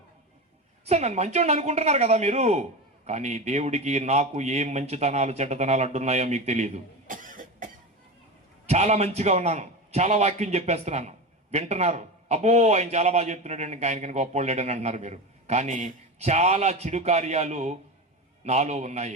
సార్ నన్ను మంచోడు అనుకుంటున్నారు కదా మీరు, కానీ దేవుడికి నాకు ఏం మంచితనాలు చెడ్డతనాలు అడ్డున్నాయో మీకు తెలియదు. చాలా మంచిగా ఉన్నాను, చాలా వాక్యం చెప్పేస్తున్నాను, వింటున్నారు. అబ్బో ఆయన చాలా బాగా చెప్తున్నాడు అండి, ఆయనకి గొప్పోళ్ళేడని అంటున్నారు మీరు. కానీ చాలా చెడు కార్యాలు నాలో ఉన్నాయి.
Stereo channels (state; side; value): normal; both; correlation 0.23